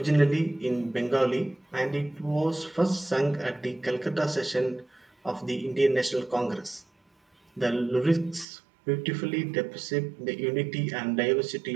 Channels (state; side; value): drops out; left; at 8.5 s